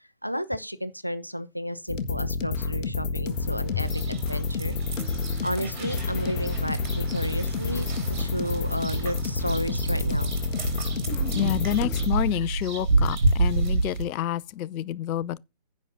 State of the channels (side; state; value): both; inverted; correlation -0.60